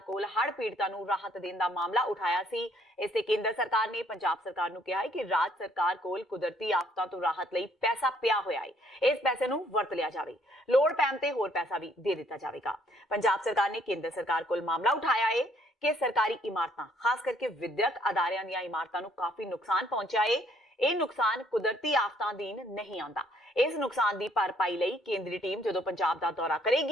ਹੜ੍ਹ ਪੀੜਤਾਂ ਨੂੰ ਰਾਹਤ ਦੇਣ ਦਾ ਮਾਮਲਾ ਉਠਾਇਆ ਸੀ। ਇਸ ਤੇ ਕੇਂਦਰ ਸਰਕਾਰ ਨੇ ਪੰਜਾਬ ਸਰਕਾਰ ਨੂੰ ਕਿਹਾ ਹੈ ਕਿ ਰਾਜ ਸਰਕਾਰ ਕੋਲ ਕੁਦਰਤੀ ਆਫਤਾਂ ਤੋਂ ਰਾਹਤ ਲਈ ਪੈਸਾ ਪਿਆ ਹੋਇਆ ਹੈ, ਇਸ ਪੈਸੇ ਨੂੰ ਵਰਤ ਲਿਆ ਜਾਵੇ, ਲੋੜ ਪੈਣ ਤੇ ਹੋਰ ਪੈਸਾ ਵੀ ਦੇ ਦਿੱਤਾ ਜਾਵੇਗਾ। ਪੰਜਾਬ ਸਰਕਾਰ ਨੇ ਕੇਂਦਰ ਸਰਕਾਰ ਕੋਲ ਮਾਮਲਾ ਉਠਾਇਆ ਹੈ ਕਿ ਸਰਕਾਰੀ ਇਮਾਰਤਾਂ, ਖਾਸ ਕਰਕੇ ਵਿਦਿਅਕ ਅਦਾਰਿਆਂ ਦੀਆਂ ਇਮਾਰਤਾਂ ਨੂੰ ਕਾਫੀ ਨੁਕਸਾਨ ਪਹੁੰਚਿਆ ਹੈ। ਇਹ ਨੁਕਸਾਨ ਕੁਦਰਤੀ ਆਫਤਾਂ ਅਧੀਨ ਨਹੀਂ ਆਉਂਦਾ। ਇਸ ਨੁਕਸਾਨ ਦੀ ਭਰਪਾਈ ਲਈ ਕੇਂਦਰੀ ਟੀਮ ਜਦੋਂ ਪੰਜਾਬ ਦਾ ਦੌਰਾ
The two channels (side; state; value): both; normal; correlation 0.65